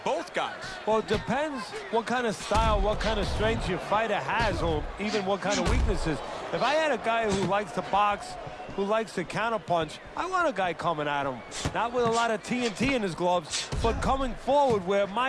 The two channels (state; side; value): identical; both; correlation 1.00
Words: both guys. Well, it depends what kind of style, what kind of strength your fighter has, or even what kind of weaknesses. If I had a guy who likes to box, who likes to counterpunch, I want a guy coming at him, not with a lot of TNT in his gloves, but coming forward where